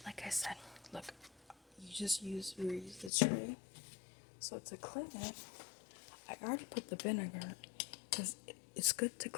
like I said, look, you use the tray. So to clean it, I already put the vinegar because it's good to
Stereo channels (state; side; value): drops out; right; at 3.1 s